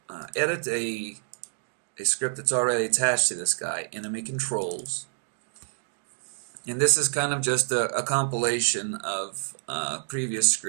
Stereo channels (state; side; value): silent; left; digital silence